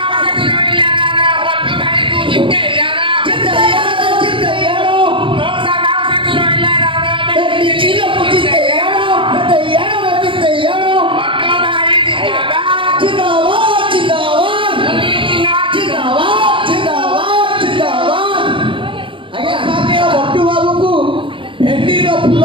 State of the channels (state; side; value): late; left; 0.25 ms